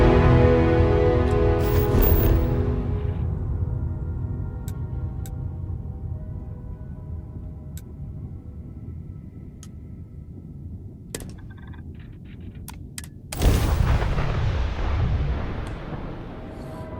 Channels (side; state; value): both; identical; correlation 1.00